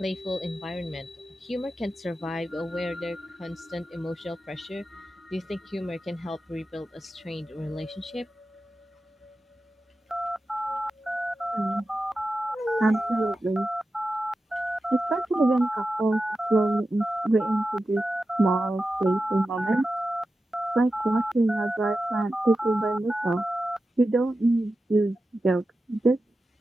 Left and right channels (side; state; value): both; normal; correlation 0.92